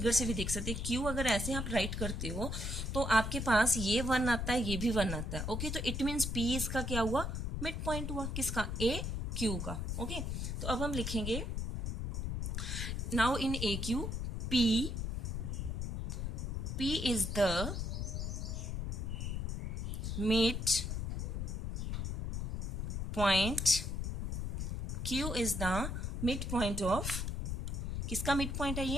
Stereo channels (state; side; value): noise; left; rumble, 2 dB below the sound